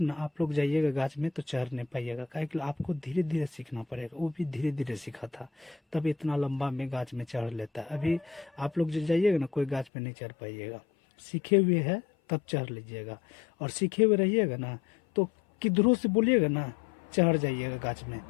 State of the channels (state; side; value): drops out; right; at 9.9 s